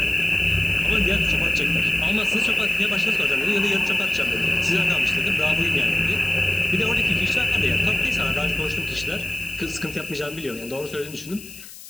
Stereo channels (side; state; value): left; noise; hiss, 16 dB below the sound